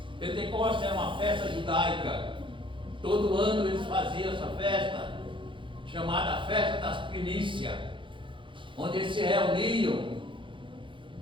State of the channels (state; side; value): late; left; 0.24 ms